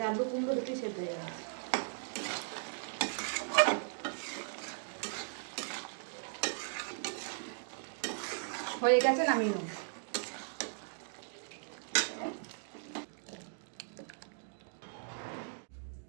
আলু কুমড়ো দুটোই সেদ্ধ হয়ে গেছে। হয়ে গেছে, নামিয়ে নেব।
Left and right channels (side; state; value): left; silent; digital silence